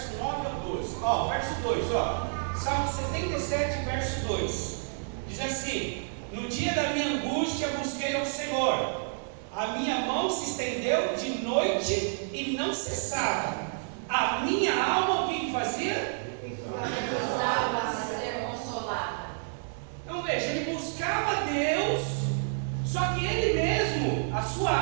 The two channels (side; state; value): left; silent; digital silence